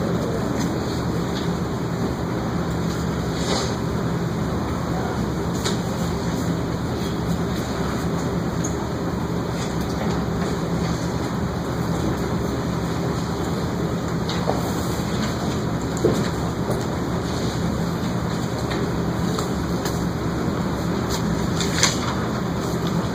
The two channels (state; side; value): identical; both; correlation 1.00